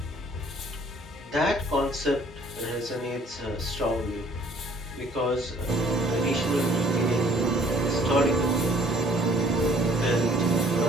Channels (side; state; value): both; normal; correlation 0.58